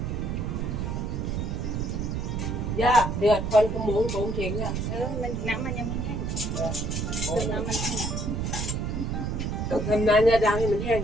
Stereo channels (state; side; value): noise; right; rumble, 1 dB below the sound